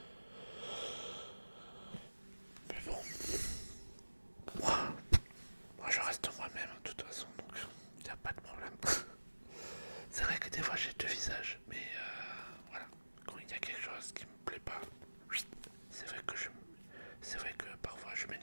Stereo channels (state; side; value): inverted; both; correlation -1.00